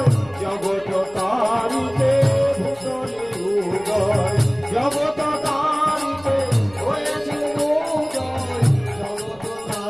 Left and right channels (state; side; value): noise; right; rumble, 25 dB below the sound